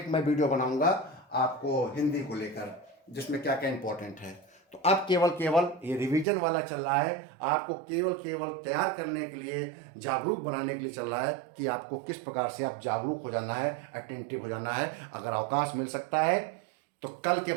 मैं वीडियो बनाऊंगा आपको हिंदी को लेकर, जिसमें क्या क्या इंपॉर्टेंट है। तो अब केवल ये रिवीजन वाला चल रहा है, आपको केवल तैयार करने के लिए, जागरूक बनाने के लिए चल रहा है कि आपको किस प्रकार से आप जागरूक हो जाना है, अटेंटिव हो जाना है। अगर अवकाश मिल सकता है तो कल के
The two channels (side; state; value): left; drops out; at 6.2 s